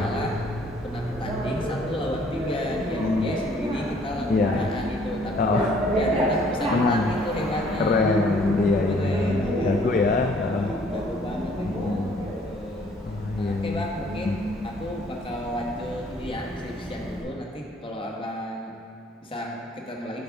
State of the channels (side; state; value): both; normal; correlation 0.60